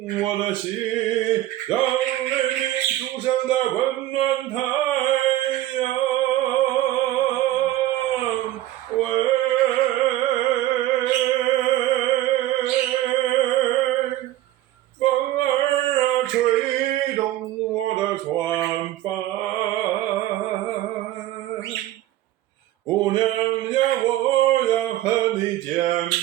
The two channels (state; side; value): quieter; left; 14.5 dB